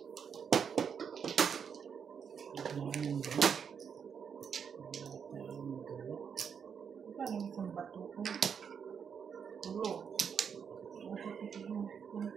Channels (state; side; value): quieter; left; 7.0 dB